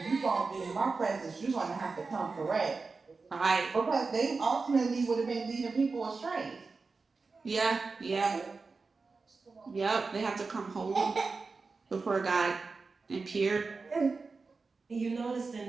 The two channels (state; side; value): quieter; left; 4.3 dB